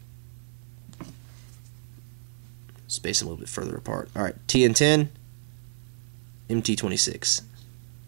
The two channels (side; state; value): left; silent; 57 dB below the other